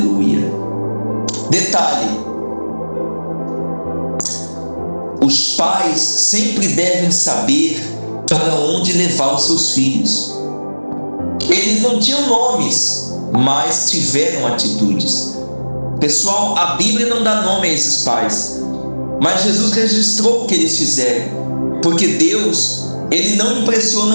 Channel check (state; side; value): inverted; both; correlation -1.00